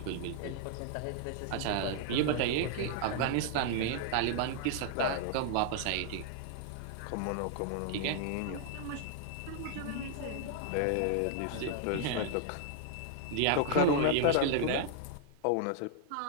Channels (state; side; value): different; both; correlation 0.00